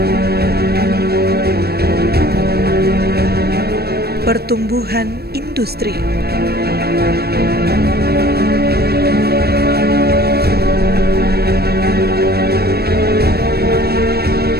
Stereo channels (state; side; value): late; left; 0.46 ms